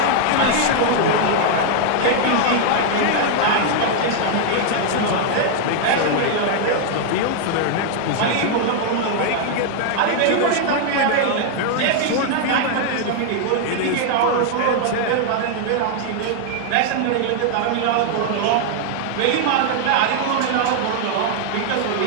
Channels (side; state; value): both; different; correlation 0.00